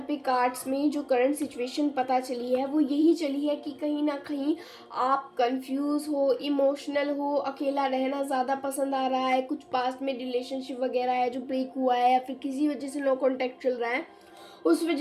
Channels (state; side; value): identical; both; correlation 1.00